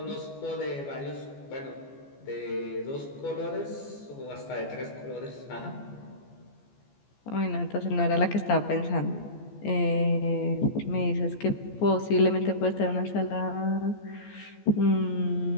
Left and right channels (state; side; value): late; right; 14 ms